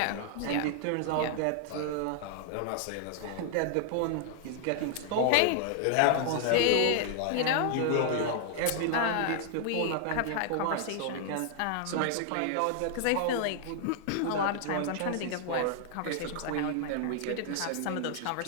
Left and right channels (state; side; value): different; both; correlation 0.00